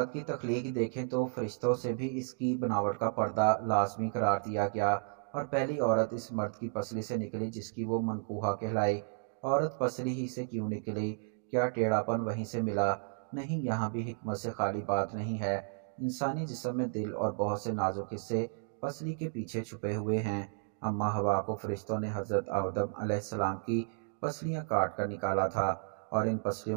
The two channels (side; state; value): left; silent; digital silence